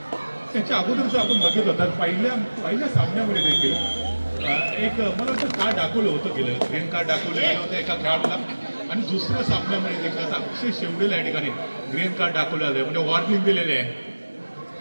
त्याच्या अगोदरच आपण बघितलं होतं पहिल्या सामन्यामध्ये देखील एक मला वाटतं कार्ड दाखवलं होतं गेलं, ग्रीन कार्ड दाखवलं गेलं होतं एका खेळाडूला आणि दुसऱ्या सामन्यामध्ये देखील आता अक्षय शेवटेला या ठिकाणी ग्रीन कार्ड दाखवलं जाते म्हणजे वॉर्निंग दिलेले आहे.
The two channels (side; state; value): both; inverted; correlation -1.00